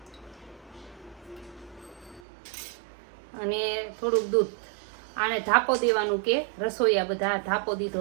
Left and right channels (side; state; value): left; drops out; at 2.2 s